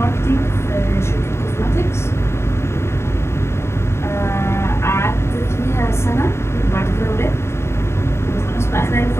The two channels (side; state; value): right; late; 0.13 ms